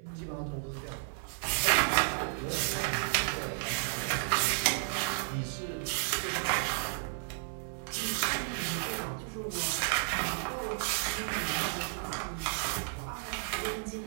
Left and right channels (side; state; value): left; silent; 56 dB below the other